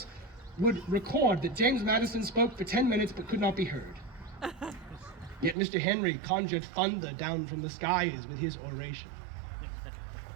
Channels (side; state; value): left; drops out; at 5.6 s